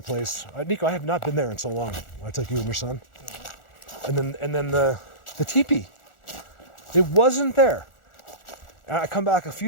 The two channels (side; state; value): right; late; 1.4 ms